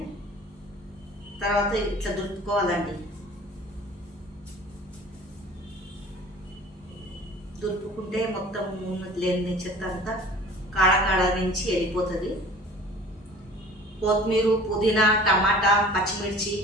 తర్వాత ఇట్లా దులుపుకోవాలండి. దులుపుకుంటే మొత్తం లేని చెత్త అంతా కాడ నుంచి వెళ్ళిపోతుంది. కొత్తిమీర పుదీనా టమాటా పచ్చిమిర్చి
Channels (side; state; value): both; normal; correlation 0.45